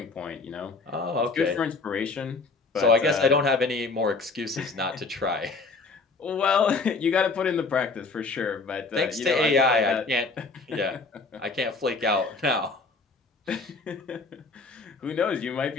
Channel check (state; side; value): quieter; right; 3.9 dB